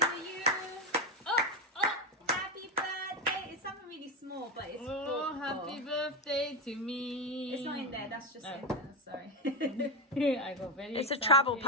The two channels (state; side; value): normal; both; correlation 0.10